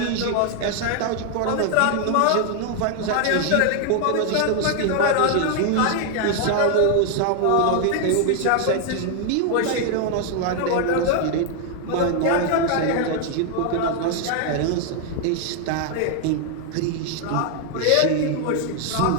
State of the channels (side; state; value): both; different; correlation 0.00